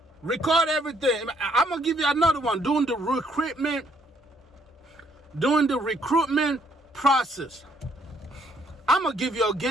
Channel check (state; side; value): normal; both; correlation 0.68